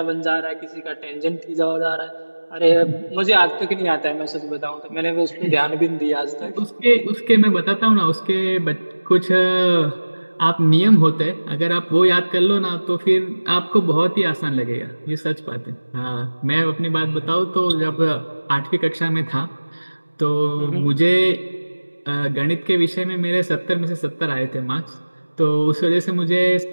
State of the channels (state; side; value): inverted; both; correlation -1.00